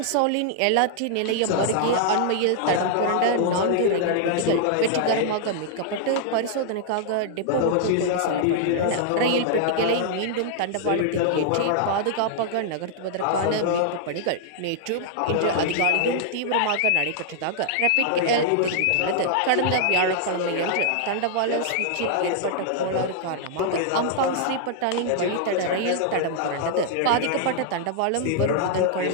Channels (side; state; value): both; different; correlation -0.01